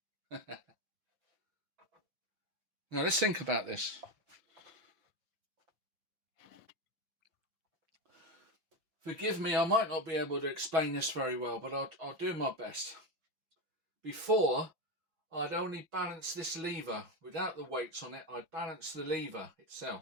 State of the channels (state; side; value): late; left; 5.9 ms